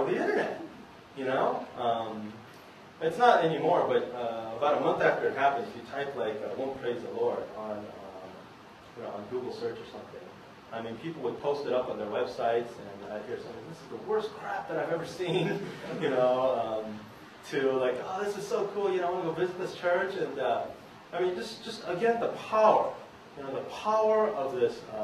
the internet, you know? It's not anymore, but about a month after it happened, if you type, like, Won't Praise the Lord on, you know, on Google search or something, I mean, people would post it up on their websites, and I'd hear something, this is the worst crap that I've ever seen, you know, to like, oh, this is so cool, you know, I want to go visit this church, and I mean, just again, the power, you know, the power of this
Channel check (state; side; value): identical; both; correlation 1.00